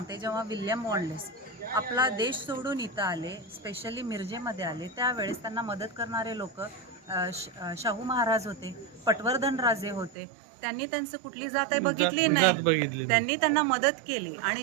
जेव्हा विल्यम वॉलेस आपला देश सोडून इथं आले, स्पेशली मिरजेमध्ये आले, त्यावेळेस त्यांना मदत करणारे लोक शाहू महाराज होते, पटवर्धन राजे होते. त्यांनी त्यांचं कुठली जात बघितली नाही, त्यांनी त्यांना मदत केली. आणि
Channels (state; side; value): drops out; left; at 10.2 s